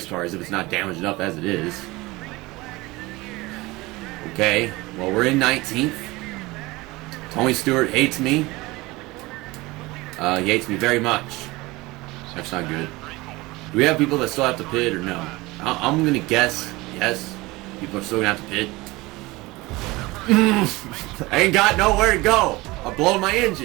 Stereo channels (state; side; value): quieter; left; 21.4 dB